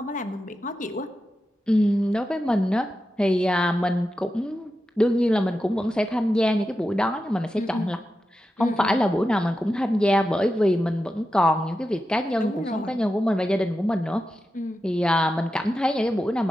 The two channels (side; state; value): both; normal; correlation 0.90